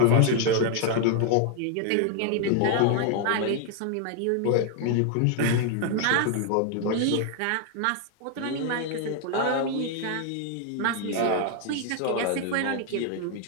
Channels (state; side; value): different; both; correlation 0.00